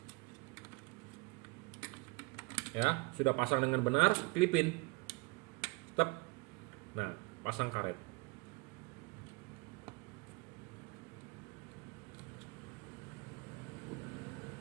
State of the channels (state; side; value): quieter; left; 26.6 dB